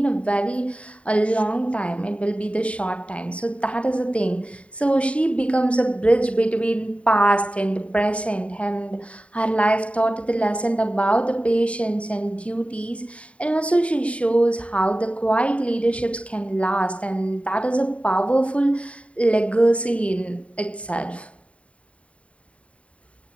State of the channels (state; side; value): late; right; 0.064 ms